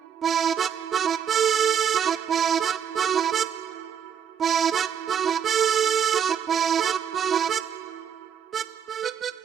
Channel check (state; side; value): quieter; left; 8.2 dB